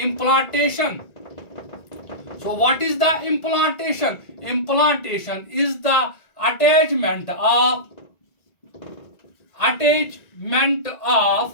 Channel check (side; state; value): right; late; 1.9 ms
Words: So what is the implantation? Implantation is the attachment of